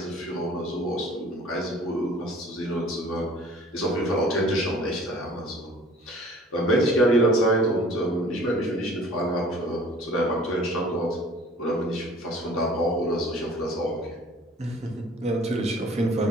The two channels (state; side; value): normal; both; correlation 0.50